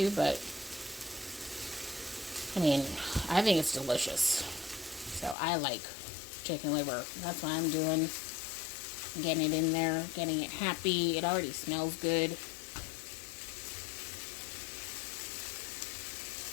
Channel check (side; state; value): right; drops out; at 5.4 s